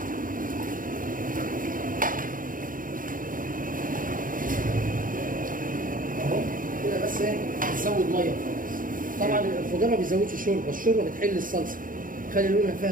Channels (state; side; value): late; left; 0.40 ms